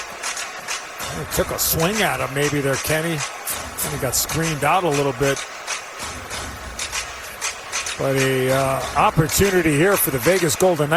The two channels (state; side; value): identical; both; correlation 1.00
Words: He took a swing at him maybe there, Kenny. And he got screened out a little bit. But a opportunity here for the Vegas Golden